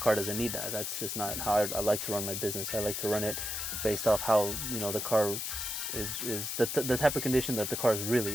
doesn't need that. That's just not how I like to run my business. I like to run it based off how, you know, the car is the type of condition that the car is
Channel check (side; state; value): left; noise; hiss, 3 dB below the sound